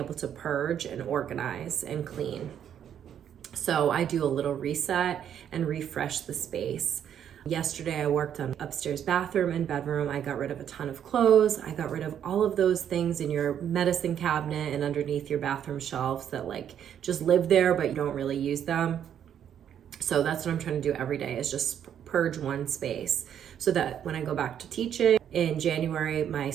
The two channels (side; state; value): left; quieter; 9.3 dB